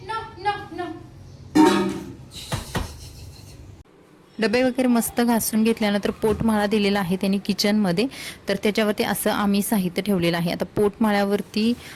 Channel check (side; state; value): both; identical; correlation 1.00